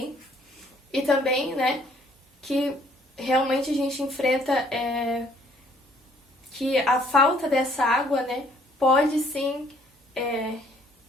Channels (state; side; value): normal; both; correlation 0.62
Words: E também, né, que realmente a gente enfrenta que a falta dessa água, né, pode sim